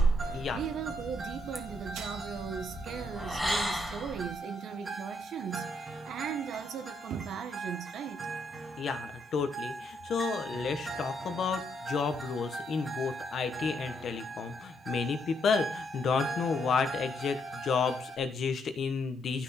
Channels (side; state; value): both; normal; correlation 0.75